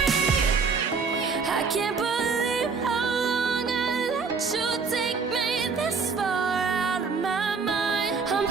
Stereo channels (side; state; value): left; quieter; 5.1 dB